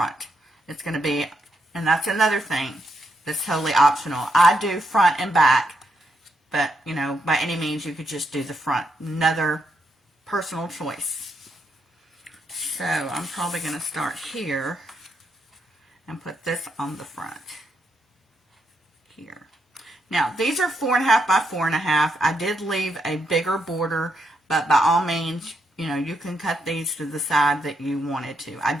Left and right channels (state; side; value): normal; both; correlation 0.79